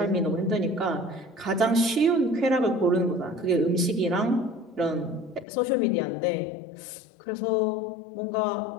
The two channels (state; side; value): drops out; right; at 5.5 s